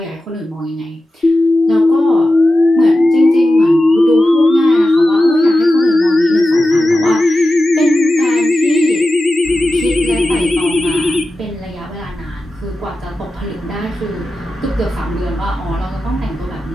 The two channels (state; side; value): normal; both; correlation 0.93